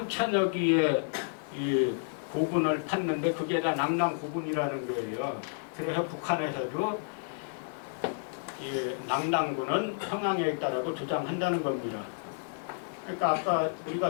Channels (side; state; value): right; silent; 57 dB below the other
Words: 개의 이 고분을 팠는데 그게 다 낙랑 고분이라는 거예요. 그래서 북한에서도 이 낙랑군은 평양에 있다라고 주장한다는 겁니다. 그러니까 아까